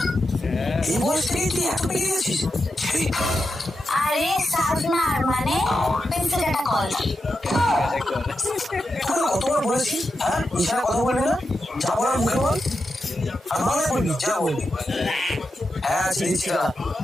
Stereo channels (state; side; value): normal; both; correlation 0.88